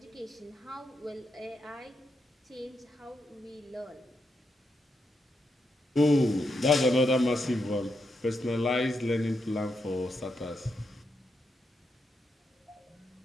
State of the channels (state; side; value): normal; both; correlation 0.83